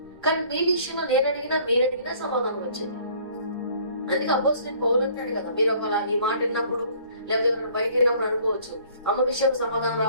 కానీ మీ విషయంలో నేను అడిగినా మీరు అడిగినా సమాధానం వచ్చేది. అందుకే అపోస్తలుడైన పౌలు అంటాడు కదా, మీరు ఒకలా నీ మాట విన్నప్పుడు లేదా ఎవరైనా బయట విన్నప్పుడు అనుకోవచ్చు అమ్మ విషయంలో సమాధానం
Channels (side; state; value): both; inverted; correlation -0.56